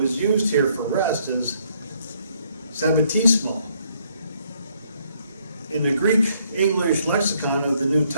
used here for rest is sabbatismo. In the Greek-English lexicon of the New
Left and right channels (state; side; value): inverted; both; correlation -0.69